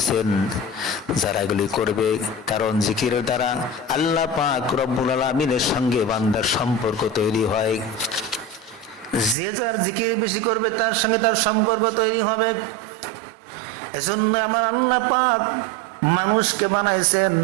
যারা এগুলি করবে। কারণ জিকিরের দ্বারা আল্লাহ পাক রব্বুল আলামিনের সঙ্গে বান্দার সম্পর্ক তৈরি হয়। যে যার জিকির বেশি করবে তার সঙ্গে তার সম্পর্ক তৈরি হবে। এজন্য আমার আল্লাহ পাক মানুষকে বানাইছেন,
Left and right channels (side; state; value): left; drops out; at 9.3 s